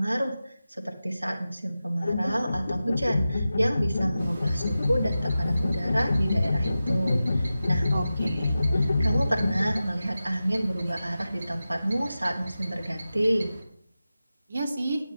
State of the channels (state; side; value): inverted; both; correlation -0.93